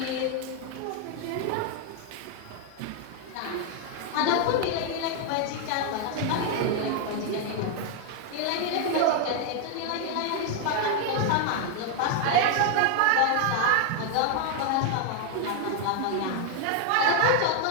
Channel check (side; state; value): both; different; correlation 0.00